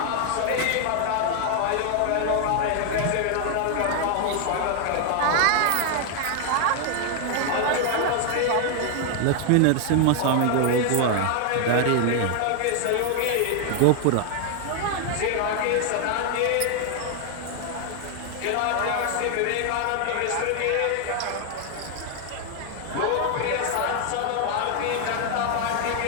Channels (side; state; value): both; different; correlation 0.00